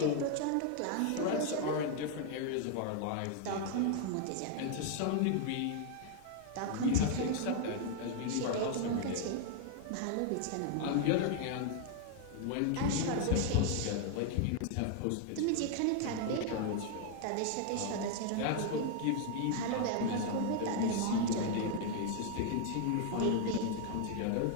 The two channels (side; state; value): both; different; correlation 0.00